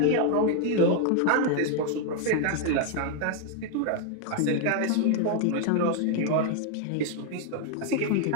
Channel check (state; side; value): different; both; correlation 0.00